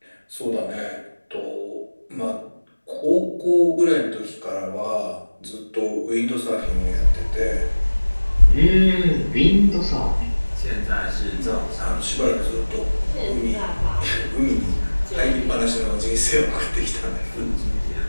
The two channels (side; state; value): both; inverted; correlation -1.00